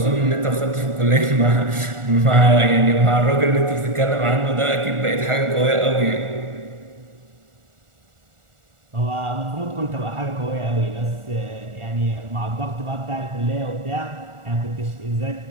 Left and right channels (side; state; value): left; late; 1.4 ms